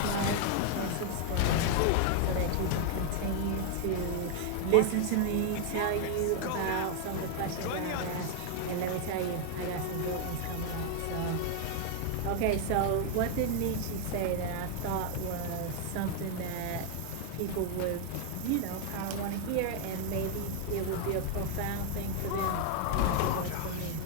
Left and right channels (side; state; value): both; different; correlation 0.00